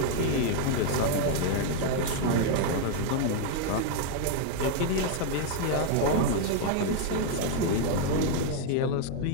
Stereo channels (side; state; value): both; different; correlation 0.00